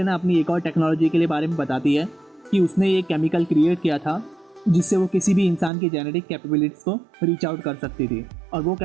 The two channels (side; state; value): left; drops out; at 5.7 s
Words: अपनी एक और टेक्नोलॉजी के लिए बारे में बताती है कि उसने ये केमिकल क्रिएट किया था जिससे वो किसी भी इंसान की जेनेटिक कैपेबिलिटीज़ को रीच आउट कर सकती थी। और वो